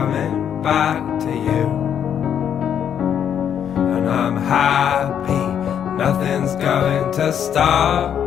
back to you. And I'm happy, nothing's going to stop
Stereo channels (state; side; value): quieter; right; 8.8 dB